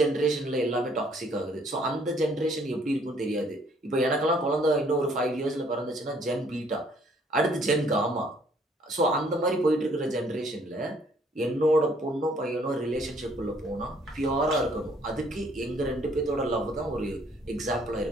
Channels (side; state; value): both; normal; correlation 0.63